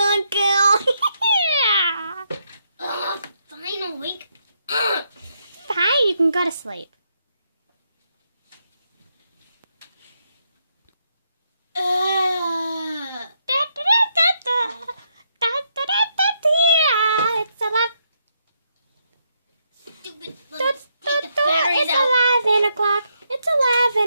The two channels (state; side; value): inverted; both; correlation -0.78